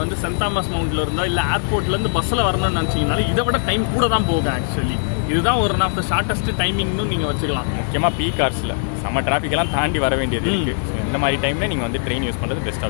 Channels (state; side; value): silent; right; digital silence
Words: வந்து சென்ட் தாமஸ் மவுண்ட்ல இருந்தோ இல்லை ஏர்போர்ட்லேருந்து பஸ்ஸில் வரணும்னு நினச்சிங்கனாலும் இதை விட டைம் கூட தான் போகும். ஆக்சுவலி இதுதான் ஒரு ஆஃப் த ஷார்ட்டஸ்ட் டைமிங்னு நீங்கள் வச்சுக்கலாம். முக்கியமாக பீக் ஹவர்ஸில் செம்ம டிராஃபிக்கெல்லாம் தாண்டி வர வேண்டியது இருக்குது. ஸோ இந்த மாதிரி டைமில் நீங்கள் வந்து ட்ரெயின் யூஸ் பண்ணுறது பெஸ்ட்